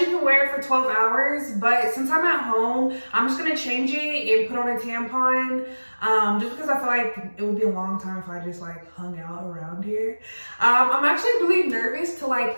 can wear it for 12 hours, but since I'm at home, I'm just gonna change it and put on a tampon. Just because I feel like it would be a long time if I just like hung out around here. I'm actually really nervous to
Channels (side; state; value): both; inverted; correlation -1.00